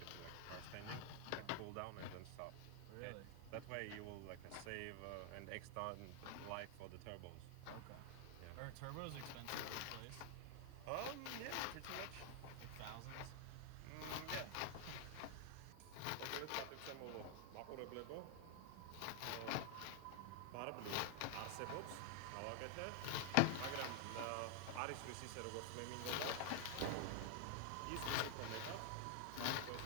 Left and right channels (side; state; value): both; different; correlation 0.00